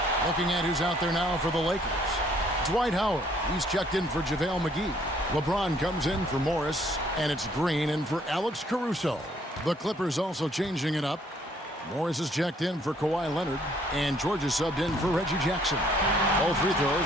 Looking at who's out there now for the Lakers. Dwight Howard. He's checked in for JaVale McGee. LeBron comes in for Morris, and it's Green in for Alex Caruso. The Clippers also changing it up. Morris is checked in for Kawhi Leonard, and George is subbed in for Reggie Jackson. Both free throws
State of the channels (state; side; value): normal; both; correlation 0.63